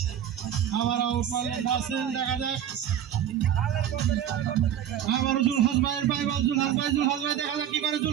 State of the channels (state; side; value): quieter; left; 10.0 dB